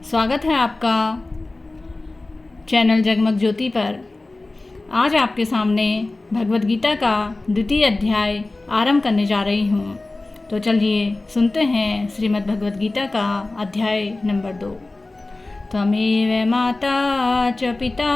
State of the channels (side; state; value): right; quieter; 3.1 dB